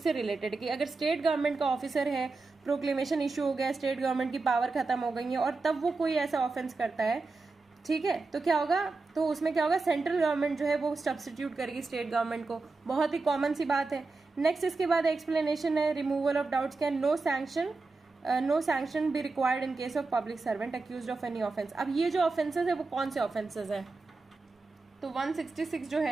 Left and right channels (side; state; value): left; quieter; 3.8 dB